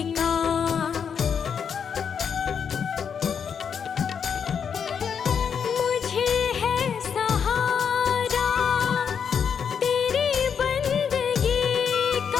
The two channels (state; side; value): quieter; right; 7.1 dB